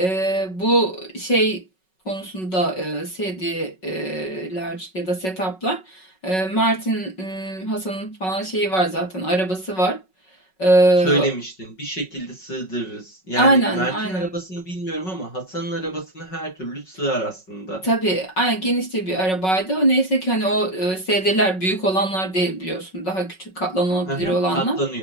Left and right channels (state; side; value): late; right; 5.4 ms